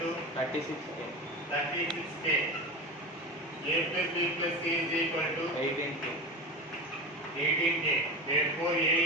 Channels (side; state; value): both; normal; correlation 0.25